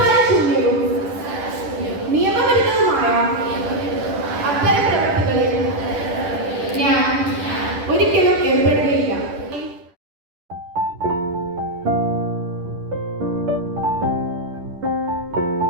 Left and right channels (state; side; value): late; left; 10 ms